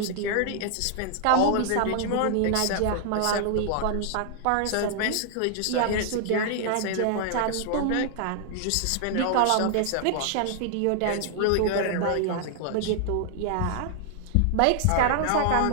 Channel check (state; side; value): different; both; correlation 0.00